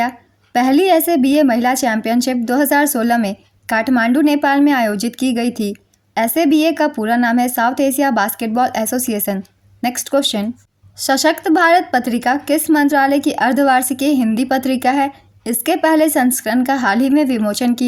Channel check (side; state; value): both; identical; correlation 1.00